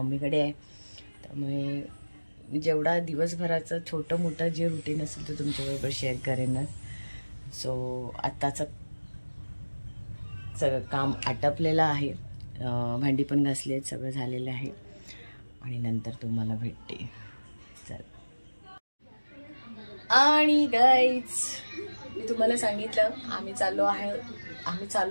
आहे. त्यामुळे जेवढा दिवसभराचं छोटं मोठं जे रुटीन असेल ते तुमच्याबरोबर शेअर करेनच. सो आत्ताचं सगळं काम आटपलेलं आहे, भांडी पण घासली आहेत, सगळं झालेलं आहे. आणि नंतर तुम्हाला भेटते. चल. आणि गाईज मी तुम्हाला सांगितलं आम्ही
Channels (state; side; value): inverted; both; correlation -1.00